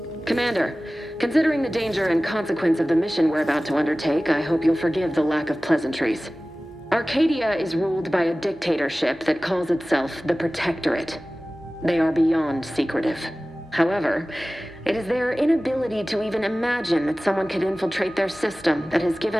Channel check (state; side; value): normal; both; correlation 0.97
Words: Commander, considering the danger and consequence of the mission we're about to undertake, I hope you'll forgive the lack of pleasantries. Arcadia is ruled by a dictatorship that calls itself the Protectorate. They are beyond secretive. However, it is their inability to even imagine that someone could infiltrate their system that has